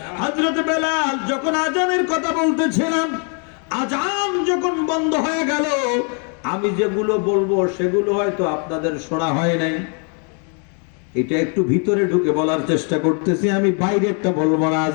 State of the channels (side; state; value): right; quieter; 39.7 dB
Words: হযরত বেলাল যখন আজানের কথা বলতেছিলাম, আজান যখন বন্ধ হয়ে গেল, আমি যেগুলো বলবো সেগুলো হয়তো আপনাদের শোনা হয় নাই। এটা একটু ভিতরে ঢুকে বলার চেষ্টা করতেছি, আমি বাইরেরটা বলবো না,